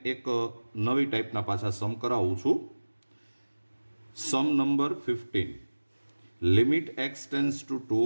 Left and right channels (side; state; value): both; inverted; correlation -1.00